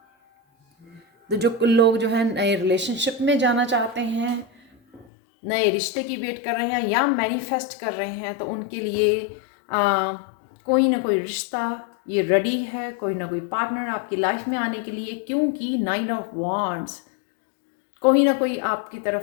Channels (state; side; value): drops out; right; at 5.1 s